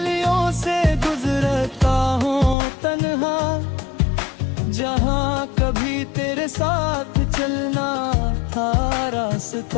से गुजरता हूँ तन्हा, जहाँ कभी तेरे साथ चलना था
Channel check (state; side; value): drops out; right; at 2.6 s